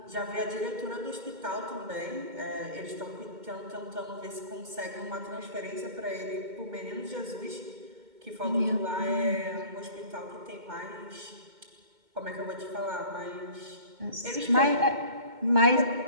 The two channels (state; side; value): late; left; 2.2 ms